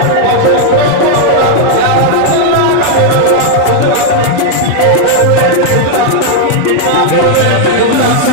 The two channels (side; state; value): both; different; correlation 0.00